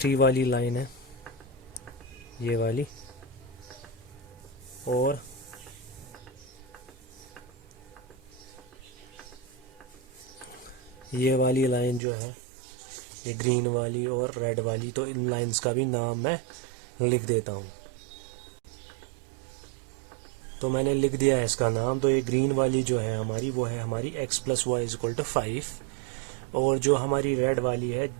वाली लाइन है, ये वाली। और ये वाली लाइन जो है ये ग्रीन वाली और रेड वाली, तो इन लाइंस का भी नाम मैं लिख देता हूँ। तो मैंने लिख दिया है इसका नाम। तो ये ग्रीन वाली जो है हमारी, वो है हमारी x plus y is equal to 5, और जो हमारी रेड वाली है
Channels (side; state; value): left; drops out; at 12.0 s